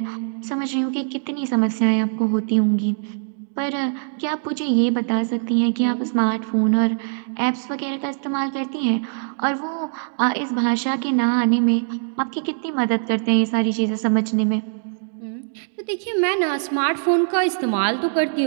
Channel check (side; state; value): left; silent; digital silence